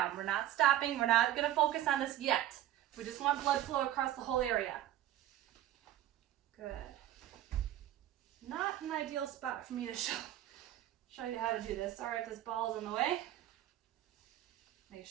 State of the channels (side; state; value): left; quieter; 12.8 dB